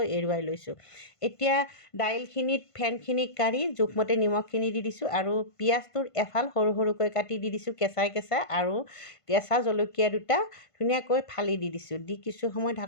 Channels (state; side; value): late; right; 1.5 ms